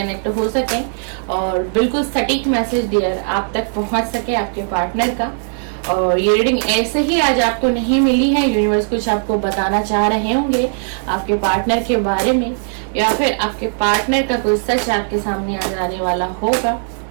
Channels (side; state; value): left; silent; 62 dB below the other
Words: हो सके और बिल्कुल सटीक मैसेज डियर आप तक पहुंच सके आपके पार्टनर का। और ये रीडिंग ऐसे ही आज आपको नहीं मिली है, यूनिवर्स कुछ आपको बताना चाह रहे होंगे आपके पार्टनर के बारे में, या फिर आपके पार्टनर का कोई सच आपके सामने आ जाने वाला होगा।